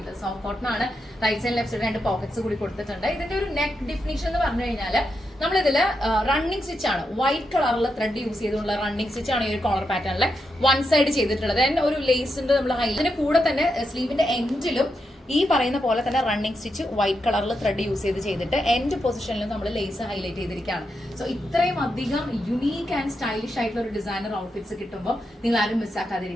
സോഫ്റ്റ് കോട്ടൺ ആണ്. Right side left side 2 pockets കൂടി കൊടുത്തിട്ടുണ്ട്. ഇതിന്റെ ഒരു നെക്ക് ഡിഫിനിഷൻ എന്ന് പറഞ്ഞു കഴിഞ്ഞാൽ നമ്മളിതില് റണ്ണിങ് സ്റ്റിച്ച് ആണ്. വൈറ്റ് കളറിൽ ത്രെഡ് യൂസ് ചെയ്തുള്ള റണ്ണിങ് സ്റ്റിച്ച് ആണ് ഈ ഒരു കോളർ പാറ്റേണിലെ വൺ സൈഡ് ചെയ്തിട്ടുള്ളത്. ഒരു ലേസിന്റെ നമ്മൾ ഇതിന്റെ കൂടെ തന്നെ സ്ലീവിന്റെ എൻഡിലും ഈ പറയുന്ന പോലെ തന്നെ റണ്ണിങ് സ്റ്റിച്ച് വൈറ്റ് കളറിൽ ത്രെഡ് യൂസ് ചെയ്തിട്ട് എൻഡ് പൊസിഷനിലും നമ്മൾ ലേസ് ഹൈലൈറ്റ് ചെയ്തിരിക്കുകയാണ്. സോ ഇത്രയും അധികം യുണീക്ക് ആൻഡ് സ്റ്റൈലിഷ് ആയിട്ടുള്ള ഒരു ഡിസൈനർ ഔട്ട്ഫിറ്റ്സ് കിട്ടുമ്പോൾ നിങ്ങൾ ആരും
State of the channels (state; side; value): normal; both; correlation 0.84